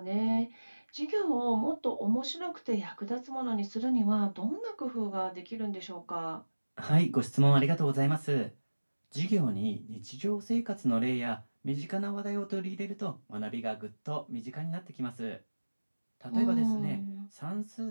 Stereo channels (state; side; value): inverted; both; correlation -1.00